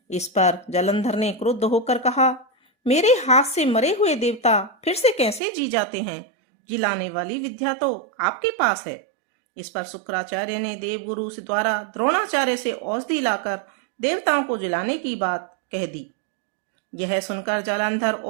इस पर जालंधर ने क्रुद्ध होकर कहा, मेरे हाथ से मरे हुए देवता फिर से कैसे जी जाते हैं? जिलाने वाली विद्या तो आपके पास है। इस पर शुक्राचार्य ने देवगुरु से द्वारा द्रोणाचार्य से औषधि लाकर देवताओं को जिलाने की बात कह दी। यह सुनकर जालंधर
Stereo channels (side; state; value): left; drops out; at 5.4 s